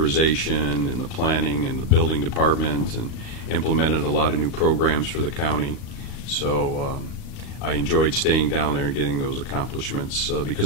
and the planning and the building department, and implemented a lot of new programs for the county. So I enjoyed staying down there and getting those accomplishments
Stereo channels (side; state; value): right; late; 38 ms